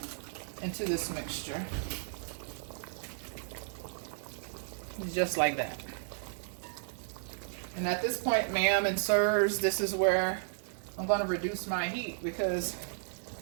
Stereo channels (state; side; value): silent; left; digital silence